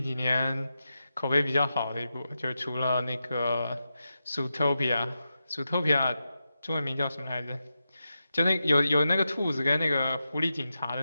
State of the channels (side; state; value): both; inverted; correlation -0.89